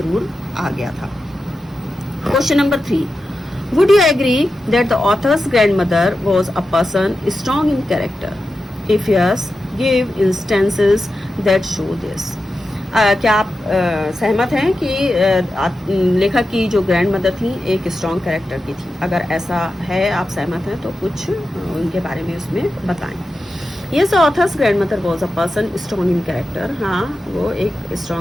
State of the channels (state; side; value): normal; both; correlation 0.91